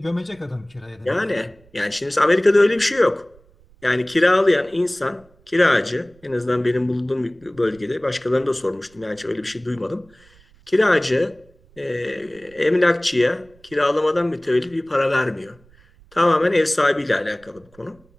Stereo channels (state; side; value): noise; right; rumble, 29 dB below the sound